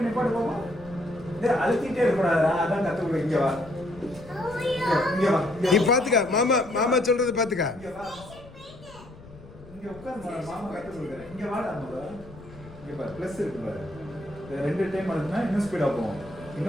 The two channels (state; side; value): noise; left; rumble, 19 dB below the sound